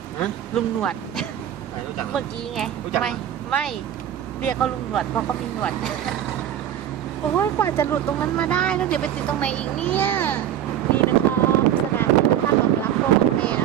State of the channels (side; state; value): left; quieter; 10.7 dB